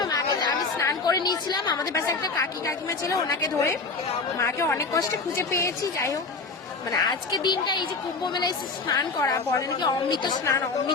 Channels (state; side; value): quieter; right; 4.1 dB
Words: মাকে, আমি স্নান করে নিয়েছিলাম, আমাদের পাশে একটা কাকিমা ছিল, ওনাকে ধরে মাকে অনেক কষ্টে খুঁজে পেয়েছি। যাই হোক, মানে আজকে দিনটা, এই যে কুম্ভ মেলায় এসে স্নান করা, বলে নাকি অমৃত স্নান,